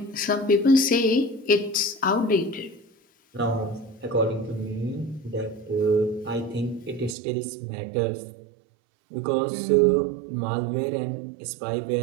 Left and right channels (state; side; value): drops out; left; at 7.2 s